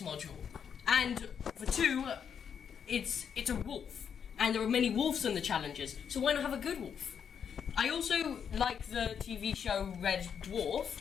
module, and for two, it's a wolf, and there are many wolves in the challenges, so why not have a good wolf? I also like the TV show Red Dwarf,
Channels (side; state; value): right; quieter; 7.5 dB